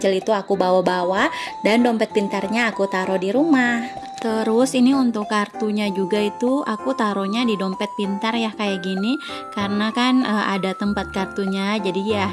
itu aku bawa-bawa dan dompet pintarnya aku taruh di rumah. Terus ini untuk kartunya juga itu aku taruhnya di dompet pintar ya kayak gini, karena kan ada tempat kartunya, jadi ya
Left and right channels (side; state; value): both; identical; correlation 1.00